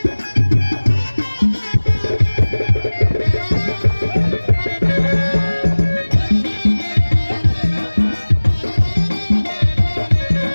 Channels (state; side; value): inverted; both; correlation -1.00